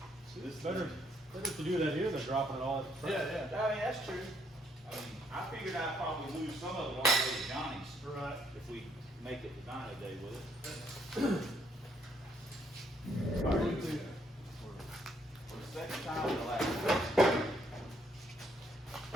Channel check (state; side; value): normal; both; correlation 0.70